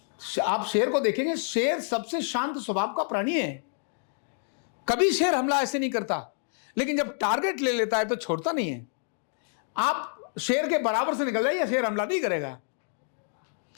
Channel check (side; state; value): right; silent; digital silence